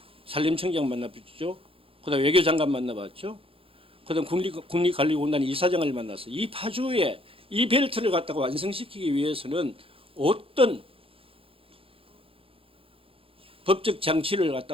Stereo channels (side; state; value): left; late; 0.27 ms